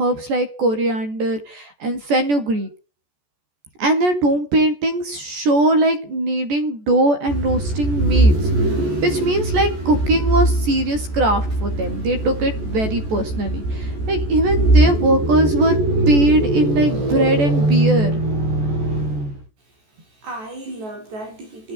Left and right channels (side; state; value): left; late; 14 ms